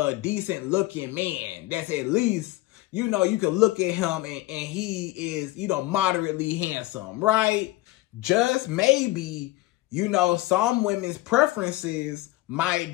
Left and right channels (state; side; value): quieter; right; 18.4 dB